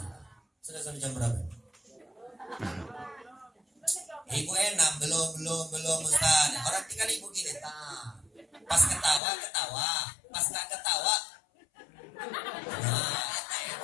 Sudah sampai jam berapa? Ibu enak, belum Ustaz. Orang tinggal ibu gini, pas ketawa, pas nggak ketawa, nah,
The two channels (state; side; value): drops out; right; at 9.2 s